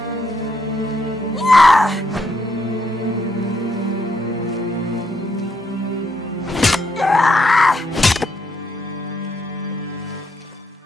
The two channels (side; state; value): both; normal; correlation 0.76